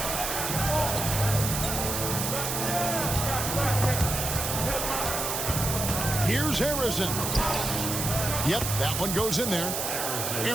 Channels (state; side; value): noise; right; hiss, 2 dB below the sound